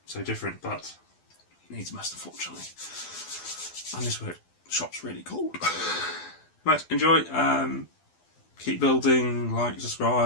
so different, but it needs must, unfortunately. And this shop's really cold. Right, enjoy. Keep building, like,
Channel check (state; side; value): late; right; 12 ms